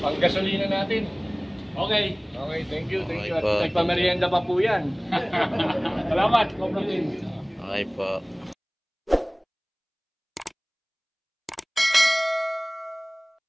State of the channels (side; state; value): both; identical; correlation 1.00